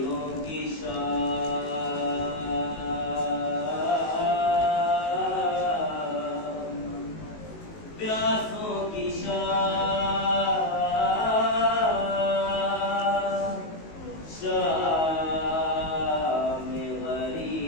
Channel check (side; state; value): right; late; 19 ms